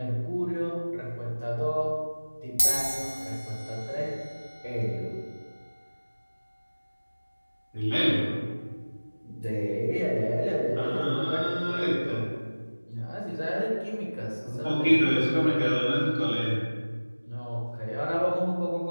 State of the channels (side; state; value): both; inverted; correlation -1.00